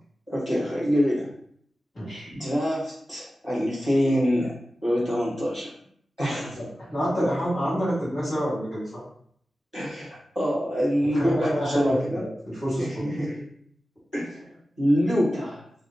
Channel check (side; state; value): both; normal; correlation 0.94